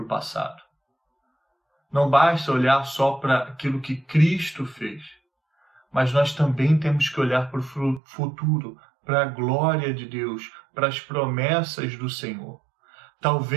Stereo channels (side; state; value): left; drops out; at 8.0 s